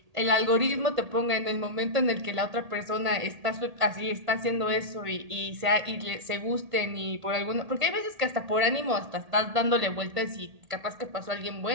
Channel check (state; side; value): late; left; 1.8 ms